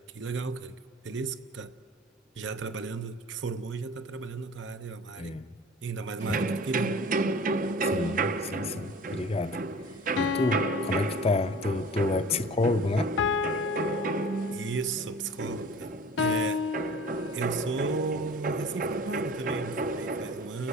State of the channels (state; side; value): normal; both; correlation 0.43